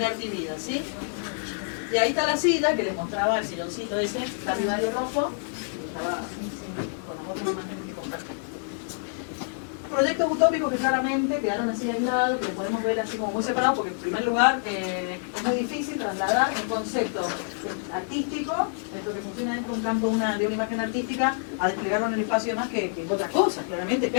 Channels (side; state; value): right; silent; digital silence